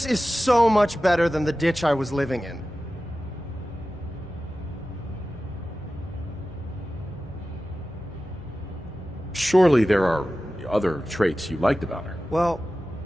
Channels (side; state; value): both; normal; correlation 0.94